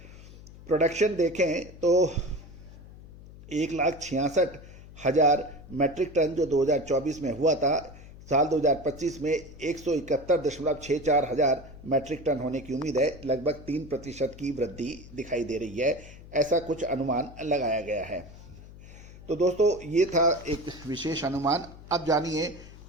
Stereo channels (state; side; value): noise; left; hum, 18 dB below the sound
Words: प्रोडक्शन देखें तो 1,66,000 मैट्रिक टन जो 2024 में हुआ था, साल 2025 में 171.64 हजार मैट्रिक टन होने की उम्मीद है। लगभग 3% की वृद्धि दिखाई दे रही है, ऐसा कुछ अनुमान लगाया गया है। तो दोस्तों, ये था एक विशेष अनुमान। अब जानिए